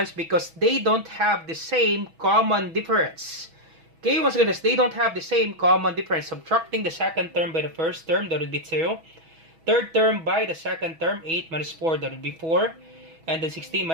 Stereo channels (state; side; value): late; left; 6.1 ms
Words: because they don't have the same common difference. Okay, once again, they don't have the same common difference. Subtracting the second term by the first term, that would be 2. Third term by the second term, 8 minus 4, that would be 4. And then 16